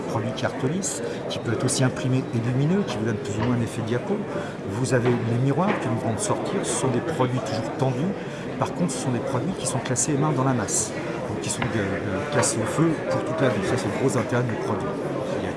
produit qui est Artolis, qui peut être aussi imprimé et lumineux, qui vous donne plus ou moins un effet diapo. Vous avez les miroirs que nous venons de sortir, ce sont des produits toujours tendus. Par contre, ce sont des produits qui sont classés main dans la masse, donc qui sont classés au feu pour toute la vie. Ça, c'est le gros intérêt du produit. Il y a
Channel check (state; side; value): identical; both; correlation 1.00